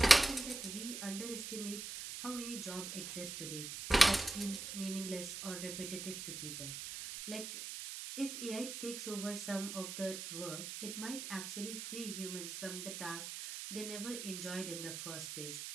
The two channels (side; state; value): right; noise; hiss, 7 dB below the sound